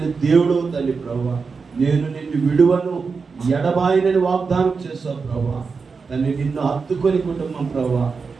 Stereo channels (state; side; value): quieter; left; 5.0 dB